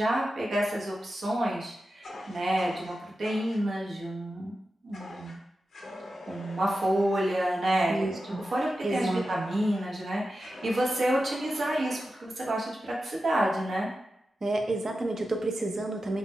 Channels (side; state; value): both; normal; correlation 0.92